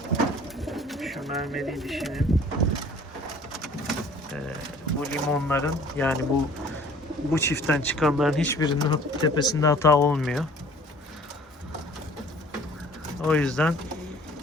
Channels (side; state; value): both; normal; correlation 0.51